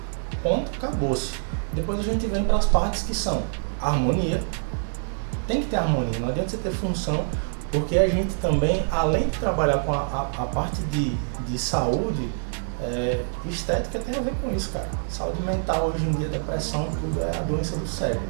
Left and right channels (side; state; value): left; silent; 61 dB below the other